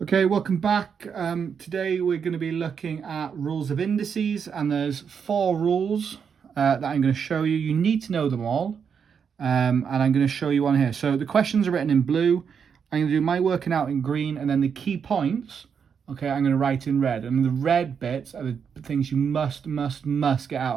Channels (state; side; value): quieter; left; 6.8 dB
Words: Okay, welcome back. Today we're going to be looking at rules of indices, and there's 4 rules that I'm going to show you. You need to know them all, and I'm going to show you one here. So the questions are written in blue. I'm going to do my working out in green, and then the key points, okay, I'm going to write in red. And the red bits are the things you must get